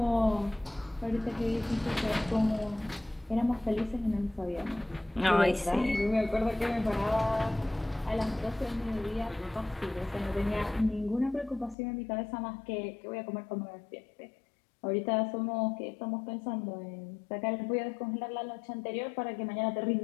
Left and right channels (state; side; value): drops out; right; at 11.8 s